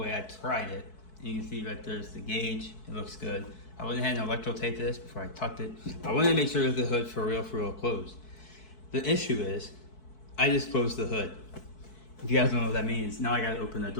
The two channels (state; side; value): late; right; 4.6 ms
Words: I tried it. You can see right there's the gauge. It looks good. I went ahead and electro taped this before I tucked it. I wanted to make sure that the hood for real closed. The issue is, I just closed the hood. If you guys don't know what that means, now I gotta open the